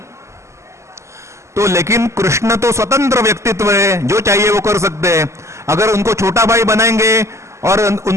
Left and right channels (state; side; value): late; left; 0.13 ms